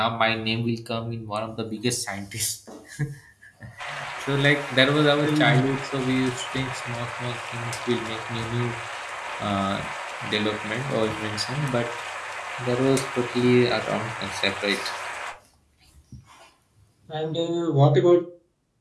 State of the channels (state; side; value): identical; both; correlation 1.00